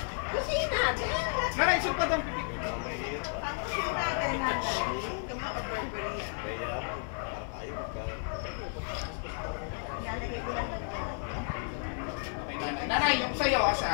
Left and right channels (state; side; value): silent; right; 56 dB below the other